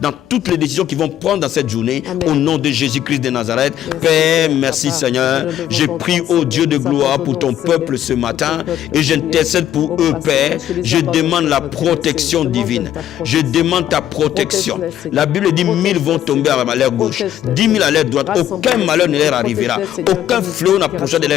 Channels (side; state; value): right; quieter; 11.4 dB